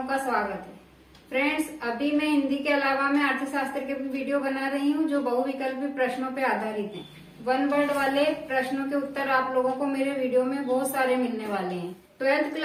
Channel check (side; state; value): both; identical; correlation 1.00